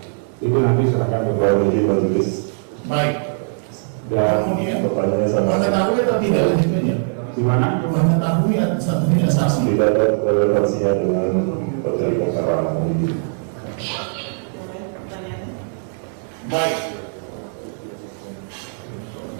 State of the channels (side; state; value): left; silent; digital silence